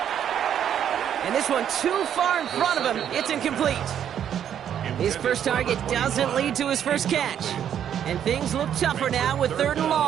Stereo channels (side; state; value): left; quieter; 9.4 dB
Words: And this one too far in front of him. It's incomplete. His first target doesn't lead to his first catch. And things look tougher now with 3rd and